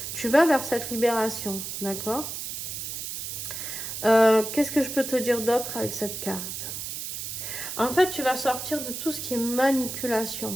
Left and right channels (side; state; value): right; noise; hiss, 6 dB below the sound